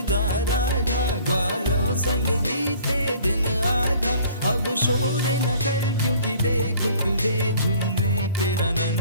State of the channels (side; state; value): both; inverted; correlation -0.52